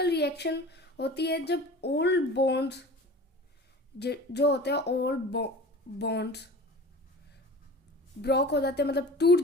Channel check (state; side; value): normal; both; correlation 0.39